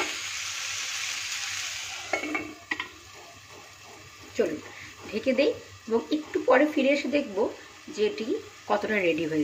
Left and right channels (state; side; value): identical; both; correlation 1.00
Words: চলুন ঢেকে দেই এবং একটু পরে ফিরে এসে দেখব যে এটি কতটা রেডি